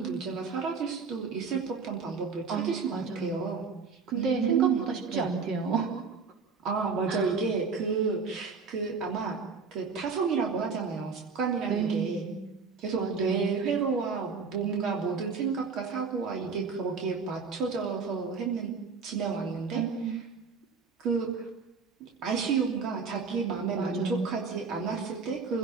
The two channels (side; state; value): left; quieter; 5.1 dB